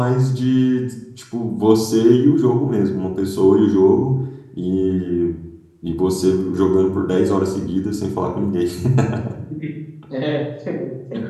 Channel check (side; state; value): both; identical; correlation 1.00